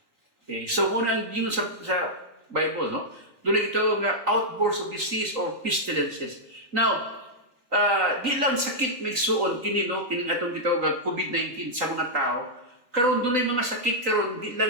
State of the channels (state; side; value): late; left; 3.9 ms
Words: Okay, so muna ang gingon sa Bible no dunay gitawag nga outbursts of disease or pestilences. Now di lang sakit migsuon kini no kining atong gitawag COVID-19 sa mga tao. Karon dunay mga sakit karon di